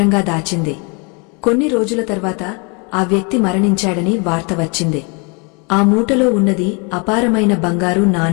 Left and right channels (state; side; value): quieter; right; 32.7 dB